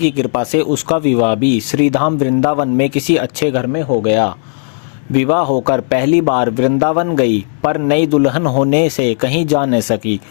कृपा से उसका विवाह भी श्रीधाम वृंदावन में किसी अच्छे घर में हो गया। विवाह होकर पहली बार वृंदावन गई, पर नई दुल्हन होने से कहीं जा न सकी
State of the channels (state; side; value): silent; right; digital silence